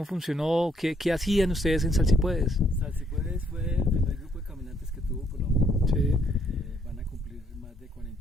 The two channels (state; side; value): normal; both; correlation 0.69